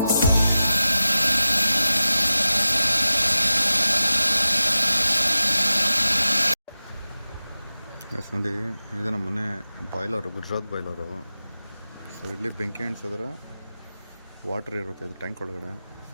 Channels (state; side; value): inverted; both; correlation -0.93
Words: yes ನೋಡಿ, ಇದು ನಮ್ಮ ಮನೆ ಬಾಯ್ಲರು, ಗುಜರಾತ್ ಬಾಯ್ಲರು. ಸೊ ಇಲ್ಲಿ ಬೆಂಕಿ ಅಂಟಿಸಿದ್ರೆ ವಾಟ್ರ್ ಇರುತ್ತೆ ಇದು ಟ್ಯಾಂಕ್ ಒಳಗಡೆ. ಸೊ